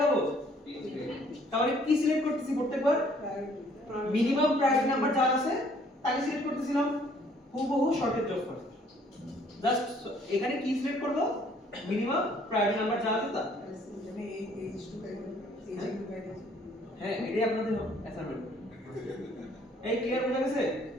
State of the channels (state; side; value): normal; both; correlation 0.61